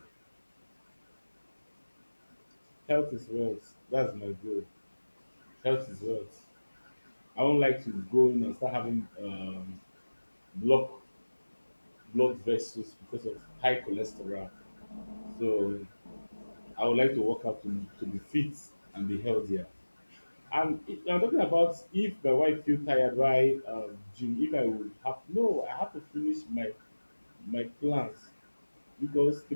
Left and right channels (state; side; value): inverted; both; correlation -1.00